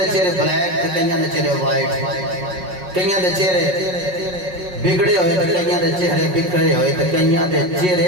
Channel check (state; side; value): late; left; 5.5 ms